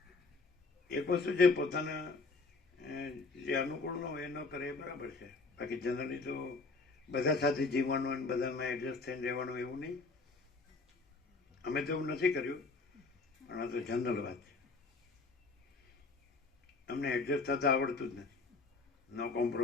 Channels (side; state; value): right; quieter; 3.9 dB